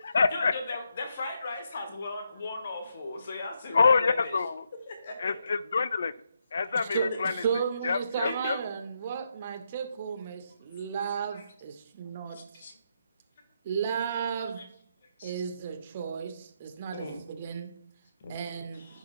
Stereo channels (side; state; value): both; inverted; correlation -0.80